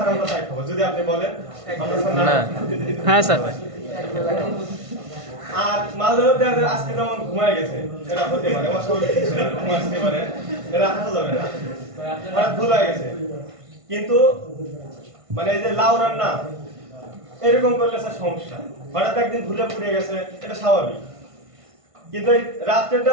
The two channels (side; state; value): left; late; 1.5 ms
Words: আমরা তাই খাবো। যদি আপনি বলেন আমরা স্যার না। হ্যাঁ স্যার। আর মাঝে মধ্যে আজকে যেমন ঘুমায় গেছে, এরা হতে পারে অস্বাভাবিক কিছু না, ঘুমাতে পারে, এরা হাসা যাবে না, হঠাৎ ভুল হয়ে গেছে। কিন্তু মানে এই যে লাউ রান্না এরকম করলে স্যার সমস্যা, হঠাৎ একদিন ভুলে পুড়ে গেছে, এটা স্বাভাবিক। কিন্তু এই